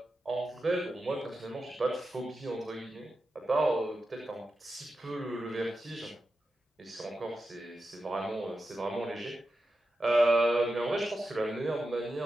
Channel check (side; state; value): both; normal; correlation 0.90